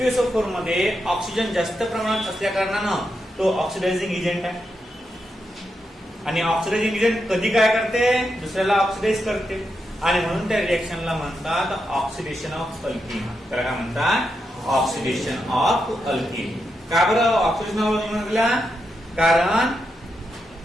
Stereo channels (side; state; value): both; normal; correlation 0.85